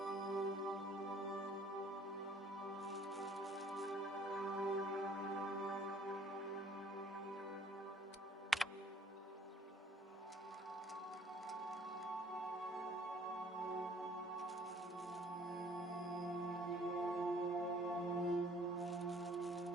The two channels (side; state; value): both; normal; correlation 0.58